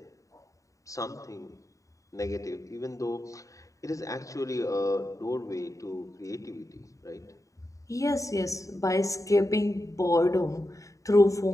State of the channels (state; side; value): late; right; 0.16 ms